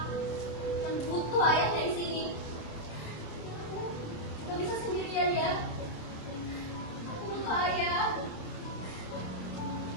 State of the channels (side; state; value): right; late; 26 ms